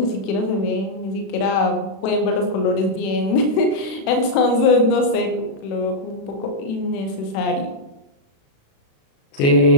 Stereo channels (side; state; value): right; late; 36 ms